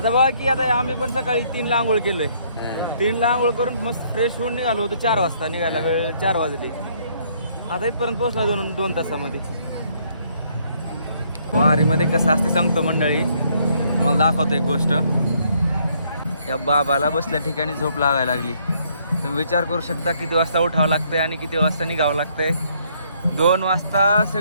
बघा की आता आम्ही पण सकाळी 3ला आंघोळ केलोय. 3ला आंघोळ करून मस्त फ्रेश होऊन निघालो होतो. 4 वाजता निघायला वेळ 4 वाजले. आता इथपर्यंत पोहोचला 2 तासामध्ये. वारीमध्ये कसं असते सांगतो मंडळी. तुम्हाला दाखवतो एक गोष्ट. या बाबाला बसल्या ठिकाणी झोप लागायला लागली. तुम्ही विचार करू शकता किती वाजता उठावं लागतंय आणि किती वाजता निघावं लागतंय. 2 वाजता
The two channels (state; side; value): inverted; both; correlation -0.68